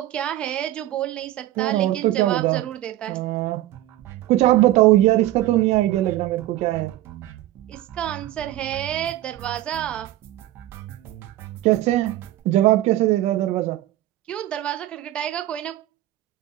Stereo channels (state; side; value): quieter; left; 14.7 dB